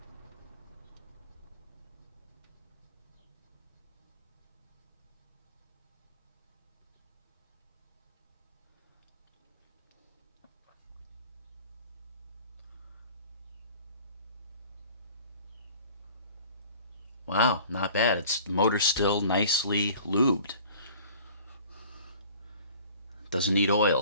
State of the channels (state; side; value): inverted; both; correlation -0.48